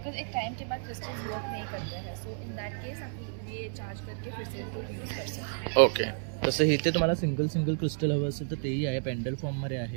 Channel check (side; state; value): left; silent; 57 dB below the other